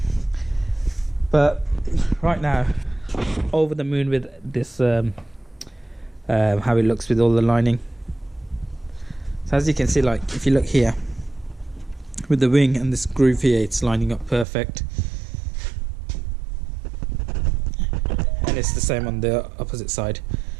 But right now, over the moon with this how it looks with all the lining. So as you can see, like if you look here with the wing and this groove here, it's lining up perfect, and it's the same on the opposite side.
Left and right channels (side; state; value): left; drops out; at 14.5 s